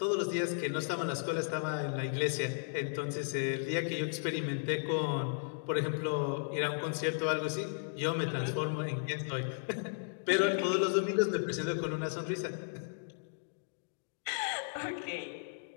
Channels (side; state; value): right; silent; digital silence